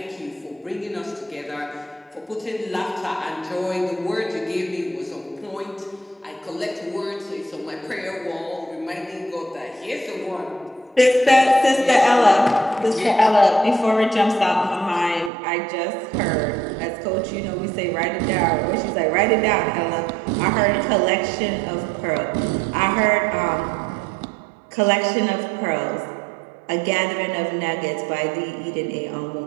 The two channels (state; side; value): drops out; left; at 15.3 s